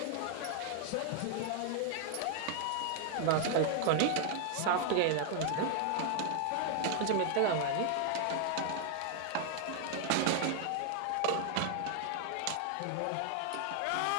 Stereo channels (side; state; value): both; different; correlation 0.00